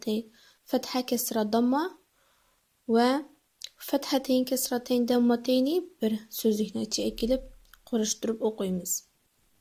fetha kesra damma ve fethateyn kesrateyn dammateyni bir sözlükne içi ekilip kuruşturup okuyumuz.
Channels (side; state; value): both; identical; correlation 1.00